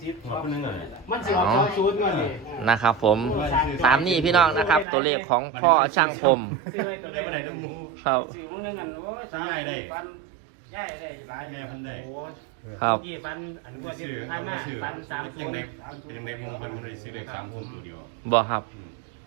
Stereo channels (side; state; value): left; drops out; at 4.9 s